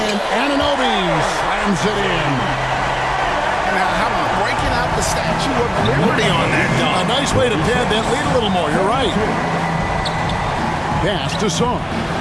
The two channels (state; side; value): identical; both; correlation 1.00